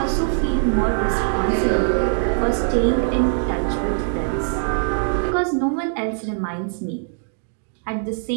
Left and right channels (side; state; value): left; silent; digital silence